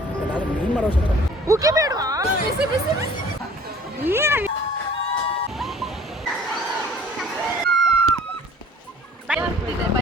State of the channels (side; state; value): both; normal; correlation 0.51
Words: ಉಕ್ಕಿ ಬೇಡವಾ? ಬಿಸಿ ಬಿಸಿ